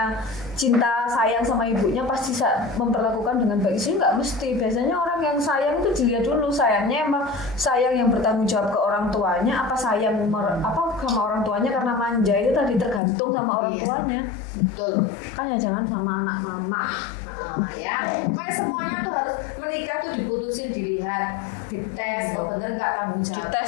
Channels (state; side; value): drops out; right; at 13.0 s